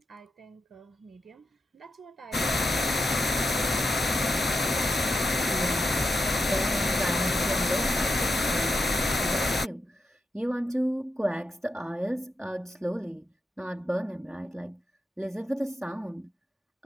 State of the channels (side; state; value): both; normal; correlation 0.86